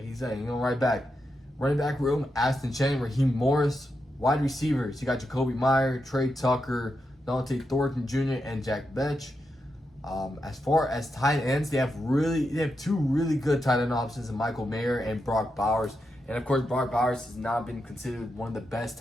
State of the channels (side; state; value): both; normal; correlation 0.86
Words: he's saying, he's going to write back. Running back room, Ashton Chen, Raheem Morris. Wide receivers, you got Jacoby Meyer, Trey Tucker, Dante Thornton Jr., and Jack Betch. As far as tight ends, they have two really good tight end options in Michael Mayer and Brock Bowers. And of course, Brock Bowers has not been considered one of the best